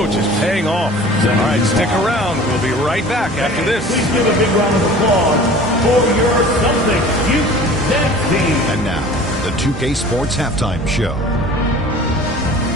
is paying off. All right, stick around. We'll be right back after this. Please give a big round of applause for your Celtics youth dance team. And now, the 2K Sports Halftime Show.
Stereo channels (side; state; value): both; normal; correlation 0.44